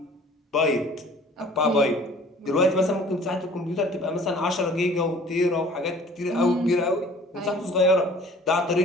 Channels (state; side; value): normal; both; correlation 0.50